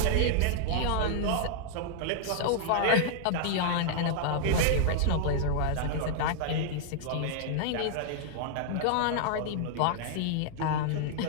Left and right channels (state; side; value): different; both; correlation -0.01